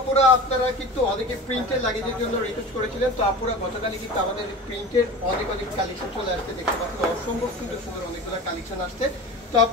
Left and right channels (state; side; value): normal; both; correlation 0.34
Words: আপুরা, আপনারা কিন্তু অনেকে প্রিন্টের লাগেজের জন্য রিকোয়েস্ট করেছিলেন। তো আপুরা গতকালই কিন্তু আমাদের প্রিন্টের অনেক কালেকশন চলে আসছে, দেখতে পাচ্ছেন অসম্ভব সুন্দর সুন্দর অনেকগুলো কালেকশন আসছে। তো